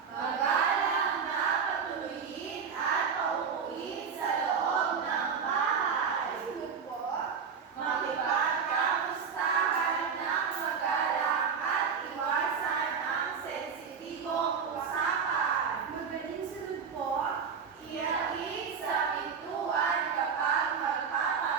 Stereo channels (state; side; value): quieter; left; 6.3 dB